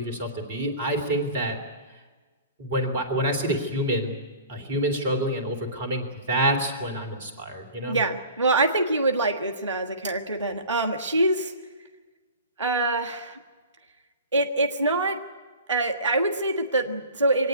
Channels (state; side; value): inverted; both; correlation -0.41